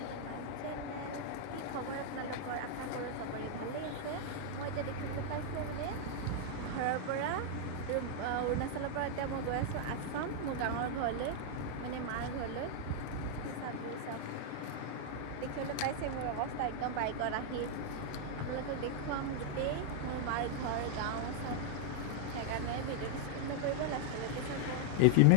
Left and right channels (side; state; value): both; different; correlation 0.00